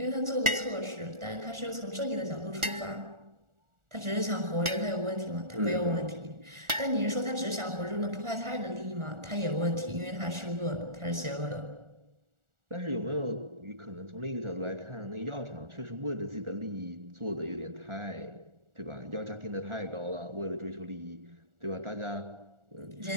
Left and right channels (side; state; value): left; late; 1.4 ms